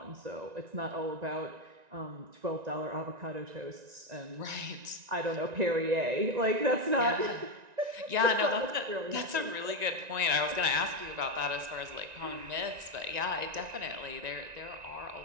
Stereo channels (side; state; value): left; late; 1.9 ms